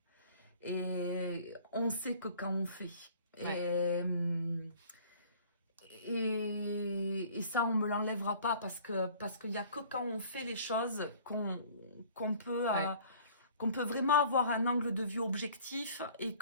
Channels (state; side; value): inverted; both; correlation -0.51